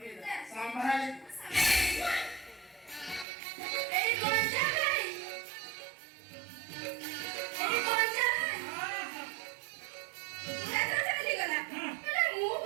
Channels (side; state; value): left; drops out; at 3.2 s